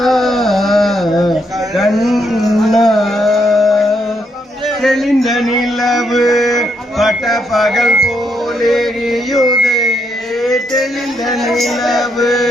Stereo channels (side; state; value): both; normal; correlation 0.77